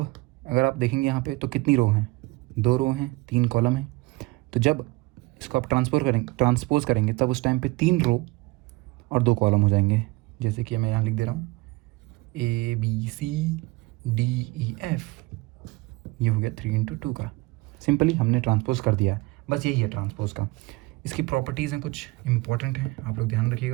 अगर आप देखेंगे यहाँ पे तो कितनी रो हैं, 2 रो हैं, 3 कॉलम हैं। तो जब इसको आप ट्रांसपोज करेंगे तब उस टाइम पे 3 रो और 2 कॉलम हो जाएंगे। जैसे कि मैं यहाँ लिख दे रहा हूँ ABCDEF, ये हो गया 3 इंटू 2 का। सिंपली हमने ट्रांसपोज कर दिया है, बस यही है ट्रांसपोज का। इसकी प्रॉपर्टीज़ हैं, कुछ इंपॉर्टेंट हैं, आप लोग ध्यान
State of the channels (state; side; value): quieter; left; 22.4 dB